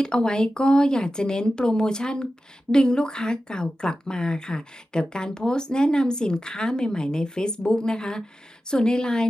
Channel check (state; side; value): normal; both; correlation 0.93